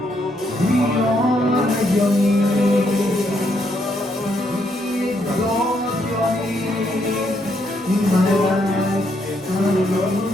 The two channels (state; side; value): normal; both; correlation 0.75